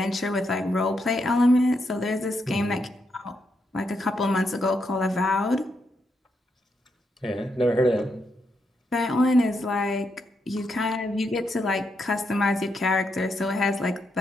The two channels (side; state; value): both; normal; correlation 0.81